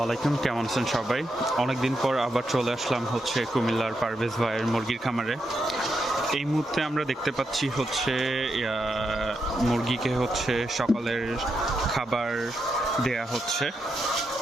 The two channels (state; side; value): normal; both; correlation 0.83